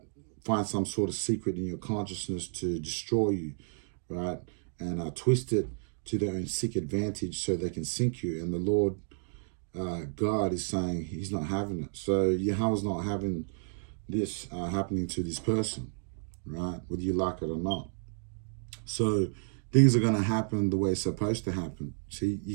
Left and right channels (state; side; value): silent; left; digital silence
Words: Find some sort of secret in your consciousness to destroy you, right? And twist it to their own sick advantage so they can sink you. And the Lord God is saying he's not having it. So Yahweh's not having this happening to this person, right? Whether you like it or not. So things are going to happen the way it's supposed to happen. See,